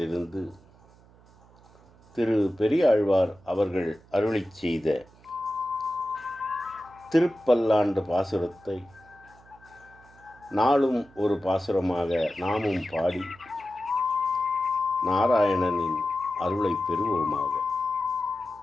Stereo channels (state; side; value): noise; right; hum, 27 dB below the sound